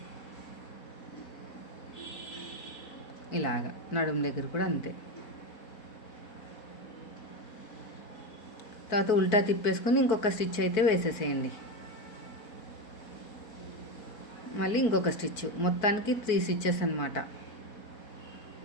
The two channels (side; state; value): right; late; 4.5 ms